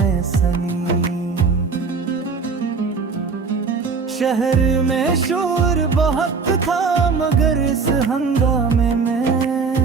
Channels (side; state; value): left; quieter; 4.9 dB